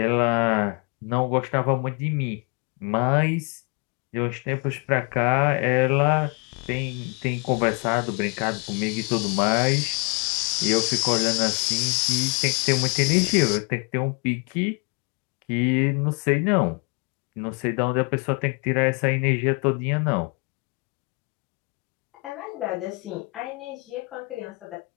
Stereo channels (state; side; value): quieter; right; 31.8 dB